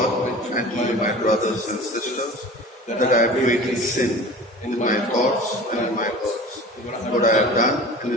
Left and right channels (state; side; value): normal; both; correlation 0.39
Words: and to you, my brothers and sisters, that I have greatly sinned in my thoughts and in my words, what I have done and